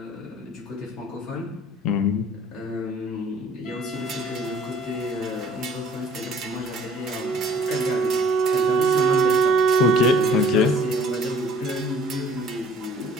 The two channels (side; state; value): both; normal; correlation 0.54